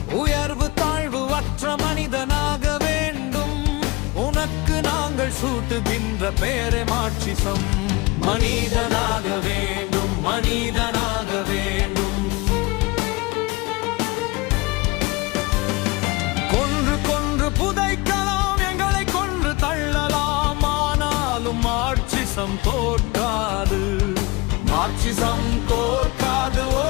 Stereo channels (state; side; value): quieter; right; 24.0 dB